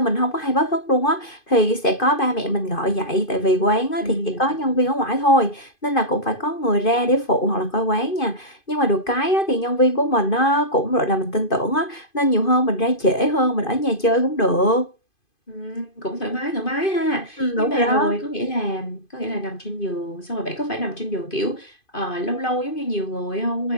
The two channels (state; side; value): late; right; 2.5 ms